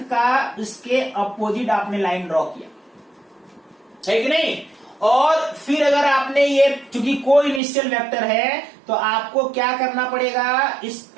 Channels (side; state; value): left; drops out; at 7.6 s